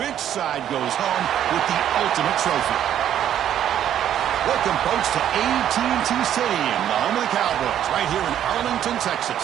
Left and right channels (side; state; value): left; quieter; 10.5 dB